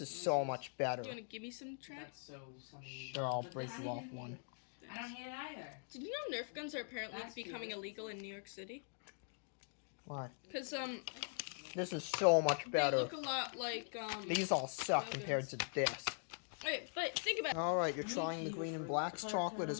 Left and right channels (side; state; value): right; silent; digital silence